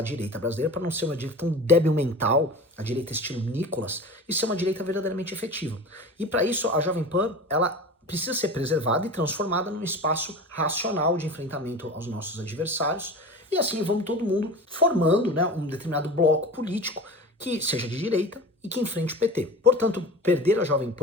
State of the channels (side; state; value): both; normal; correlation 0.34